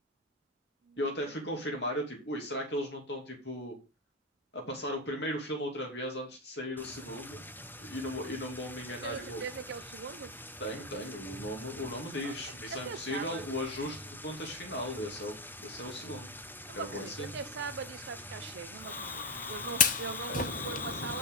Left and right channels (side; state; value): both; normal; correlation 0.11